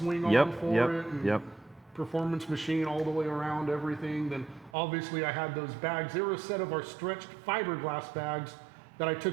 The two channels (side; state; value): left; drops out; at 4.7 s